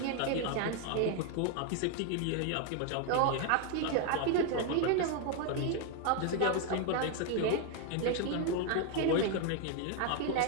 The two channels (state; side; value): different; both; correlation 0.01